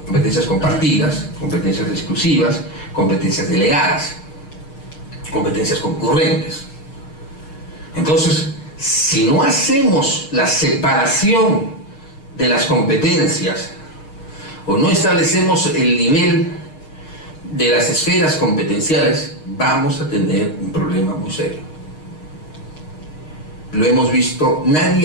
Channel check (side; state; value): right; late; 6.5 ms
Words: competencias compartidas, competencias exclusivas, competencias delegadas, competencias concurrentes. Entonces, si no hacemos la separación de las competencias o no establecemos el nivel de las esferas competenciales, vamos a tener un problema muy serio. Lo hemos visto,